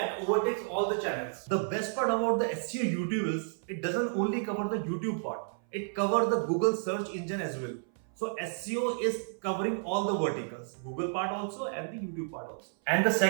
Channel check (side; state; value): left; silent; 57 dB below the other